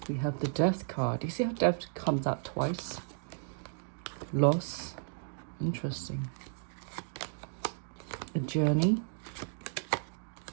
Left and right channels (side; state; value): left; silent; digital silence